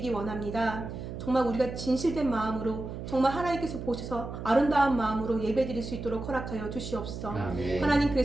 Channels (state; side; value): noise; right; hum, 8 dB below the sound